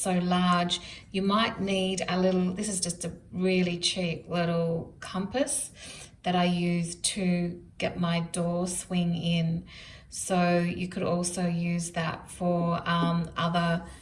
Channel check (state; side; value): identical; both; correlation 1.00